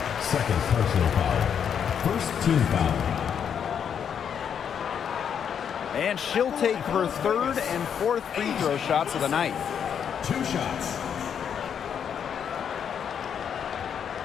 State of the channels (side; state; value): right; quieter; 7.9 dB